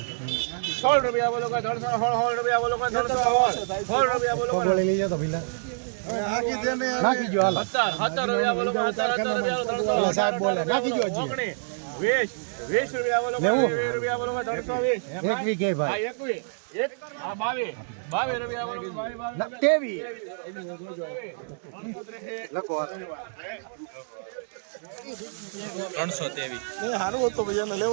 16 રૂપિયા બોલો 316 રૂપિયા બોલો 316 રૂપિયા બોલો લઈ જાઓ તો ભીલા નાખી જો હાલ 17 રૂપિયા બોલો 17 રૂપિયા સાહેબ બોલે નાખી જો હજી 20 રૂપિયા બોલો 20 રૂપિયા બોલો 320 એક વીઘે ભાઈ 21 એક આ 22 રૂપિયા બોલો 22 તેવી લખો 323 હારું હતો ભૈયા ને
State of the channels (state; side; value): silent; left; digital silence